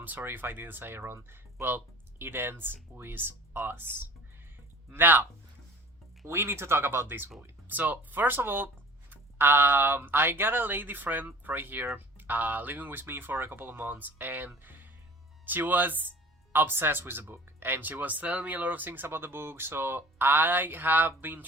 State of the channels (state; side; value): normal; both; correlation 0.45